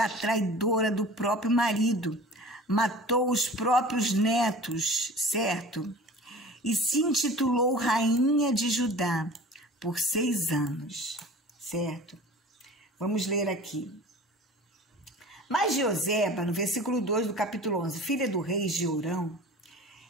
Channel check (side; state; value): both; normal; correlation 0.40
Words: a traidora do próprio marido, matou os próprios netos, certo? E se intitulou Rainha de Judá por 6 anos, certo? Vamos ler aqui. Mas Joseba, no versículo 2 do capítulo 11, filha do rei Jeorão